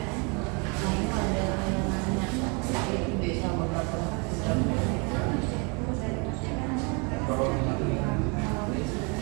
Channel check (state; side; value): quieter; left; 32.4 dB